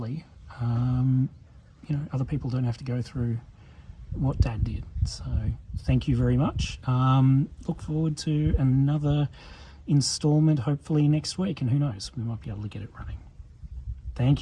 other people don't have to go through what Dad did. So thank you very much. Look forward to another installment hopefully next week, and who knows, we might be able to get it running.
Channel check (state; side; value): identical; both; correlation 1.00